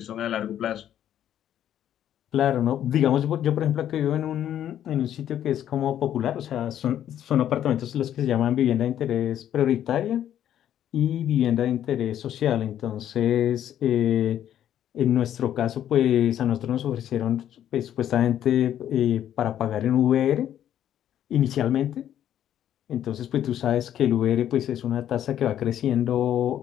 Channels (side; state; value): right; quieter; 10.8 dB